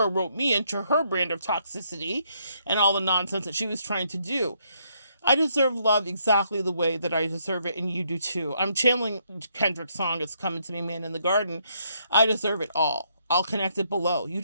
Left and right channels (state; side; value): inverted; both; correlation -0.73